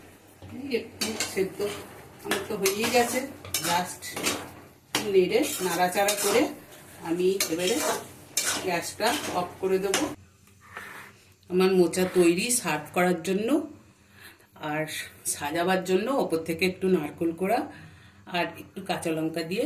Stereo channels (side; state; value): both; identical; correlation 1.00